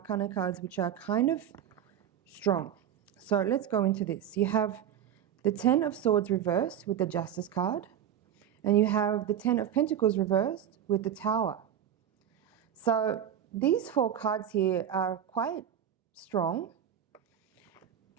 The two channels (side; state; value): left; quieter; 9.6 dB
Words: cards, which are kind of strong. So let's go into this. You have the Ten of Swords reversed with the Justice card. And you have the Ten of Pentacles reversed with the Tower. So these four cards here are quite strong.